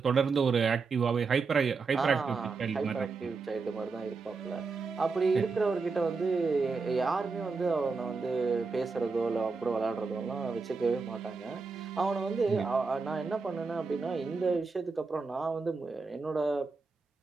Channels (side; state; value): left; quieter; 4.5 dB